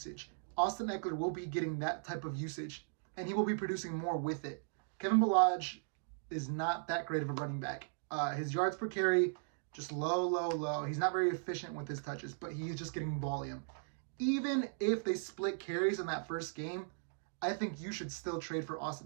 Austin Ekeler will be getting that type of usage, and he will be producing more with it. Kevin Ballage is not that great of a running back. His yards per carry, just low. He's not very efficient with his touches, but he's just getting volume. Even if they split carries in that first game, I think you should still trade for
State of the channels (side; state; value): left; silent; digital silence